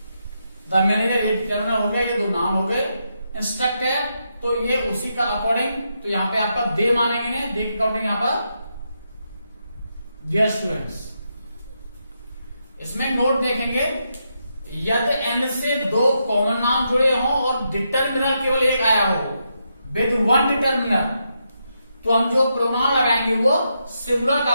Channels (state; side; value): inverted; both; correlation -0.82